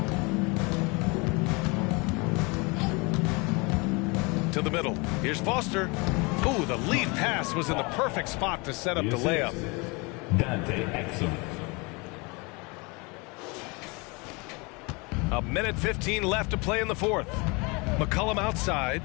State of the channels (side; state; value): right; quieter; 28.2 dB